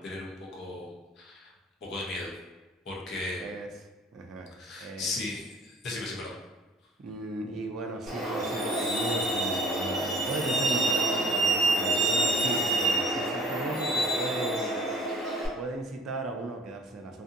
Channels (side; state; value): both; normal; correlation 0.50